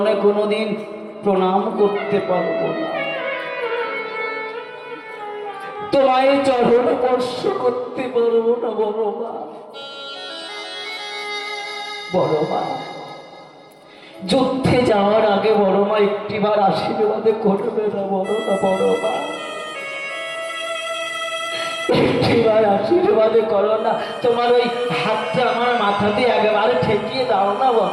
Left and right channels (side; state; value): both; identical; correlation 1.00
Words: কোনোদিন প্রণাম করতে পারবো না, তোমায় চরণ স্পর্শ করতে পারবো না বড় মা। বড় মা, যুদ্ধে যাওয়ার আগে বড় মা একটিবার আশীর্বাদ করবে না বড় না? বড় মা, একটিবার আশীর্বাদ করো না, তোমার ওই হাতটা আমার মাথাতে একেবারে ঠেকিয়ে দাও না